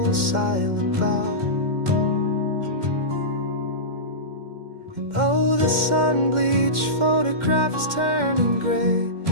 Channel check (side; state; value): left; late; 2.1 ms